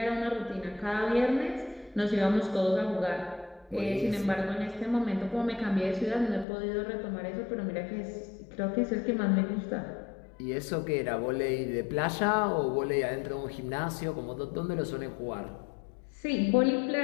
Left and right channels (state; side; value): drops out; right; at 6.5 s